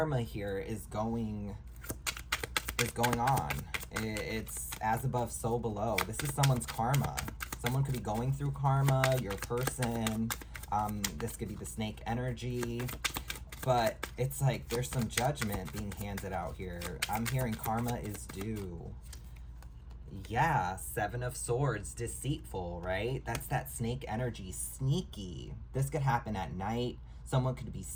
here is going on. It's as above, so below. This is someone's karma. Someone could be going through karma. Your person. This could be the snake energy. But it's like there's some judgment being handed out here. I'm hearing karma is due. Yeah, Seven of Swords, deceitful, right? That's that snake energy, sneaky. This could happen at night. Someone could be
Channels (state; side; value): identical; both; correlation 1.00